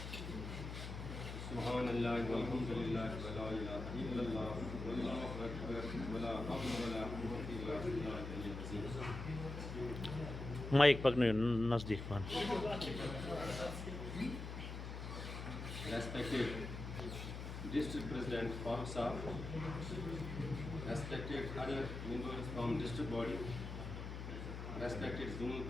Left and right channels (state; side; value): noise; left; hum, 7 dB below the sound